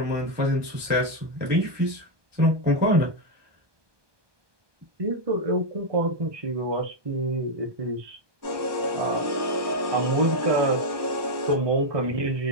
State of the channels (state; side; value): late; left; 1.2 ms